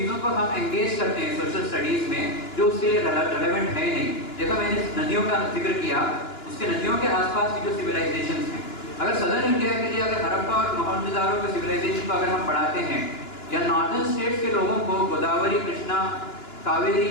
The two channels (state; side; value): late; right; 2.9 ms